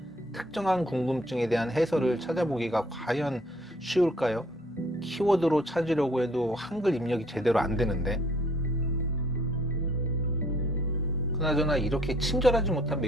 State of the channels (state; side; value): normal; both; correlation 0.59